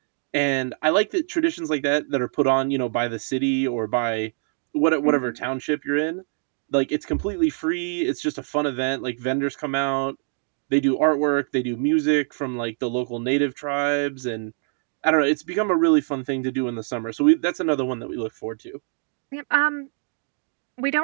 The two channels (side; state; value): left; silent; 62 dB below the other